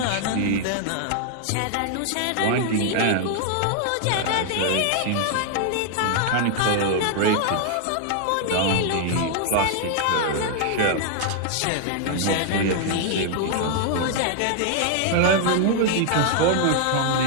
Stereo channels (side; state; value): both; different; correlation 0.00